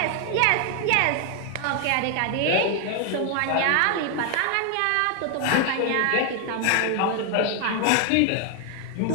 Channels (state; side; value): different; both; correlation 0.00